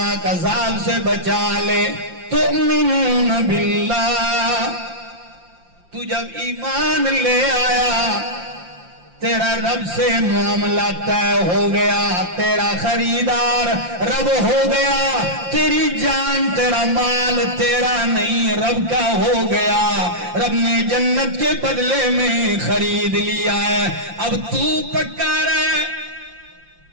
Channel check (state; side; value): late; left; 5.7 ms